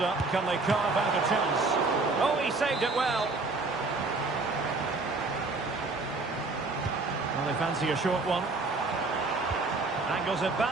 Can they carve out a chance? Oh, he saved it well. Well, they fancy a short one. Angles it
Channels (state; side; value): quieter; left; 3.6 dB